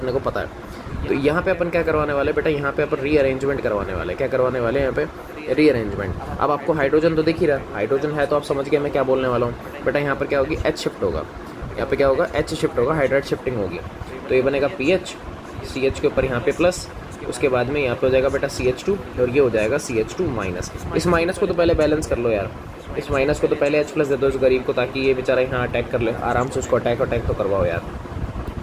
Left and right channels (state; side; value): identical; both; correlation 1.00